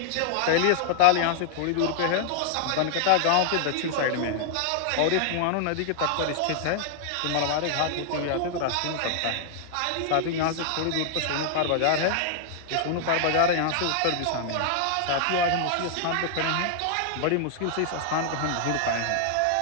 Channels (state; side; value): different; both; correlation -0.01